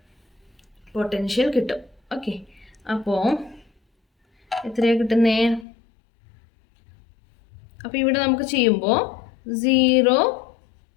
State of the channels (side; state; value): right; drops out; at 5.7 s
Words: പൊട്ടൻഷ്യൽ കിട്ടും. ഓക്കെ, അപ്പോൾ എത്രയാണ് കിട്ടുന്നേ? അപ്പോൾ ഇവിടെ നമുക്ക് ചെയ്യുമ്പോൾ 0